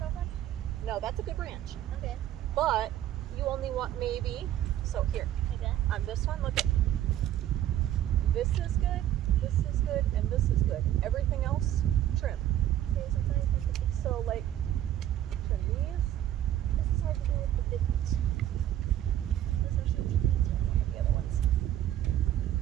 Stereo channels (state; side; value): quieter; left; 12.1 dB